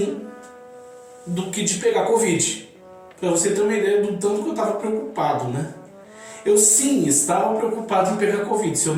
do que de pegar Covid. Para você ter uma ideia do tanto que eu estava preocupado, né? Eu sim estava preocupado em pegar Covid. Se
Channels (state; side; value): identical; both; correlation 1.00